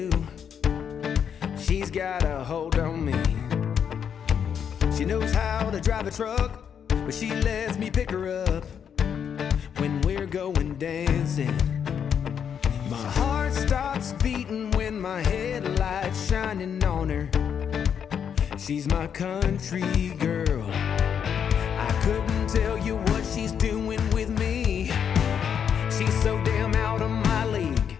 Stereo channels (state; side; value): quieter; right; 7.9 dB